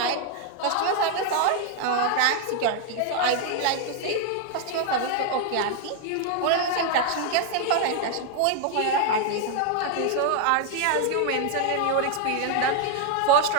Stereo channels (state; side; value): different; both; correlation 0.00